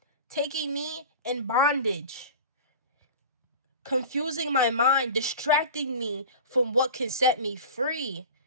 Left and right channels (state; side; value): inverted; both; correlation -0.35